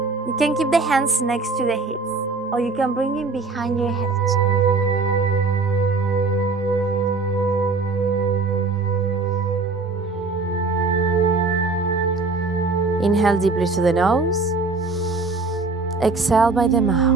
You can keep the hands next to the hips, or you can bring it behind your head. Inhale deeply through the nose. Exhale by the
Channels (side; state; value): left; quieter; 3.9 dB